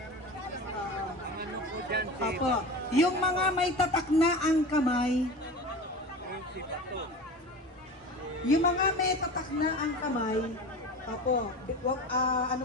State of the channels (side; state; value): both; normal; correlation 0.32